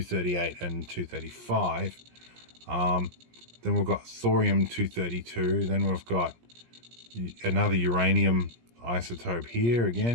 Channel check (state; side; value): late; left; 17 ms